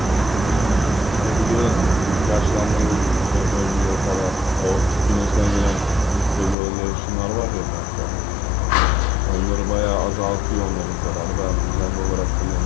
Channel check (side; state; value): right; drops out; at 6.6 s